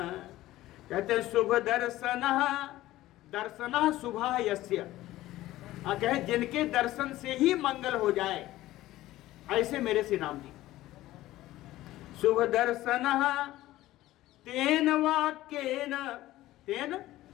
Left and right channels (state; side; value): quieter; right; 15.9 dB